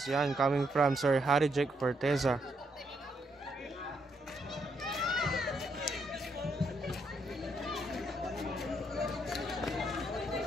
Yan, coming from Sir Harry Jake Forteza.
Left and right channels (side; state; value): both; normal; correlation 0.76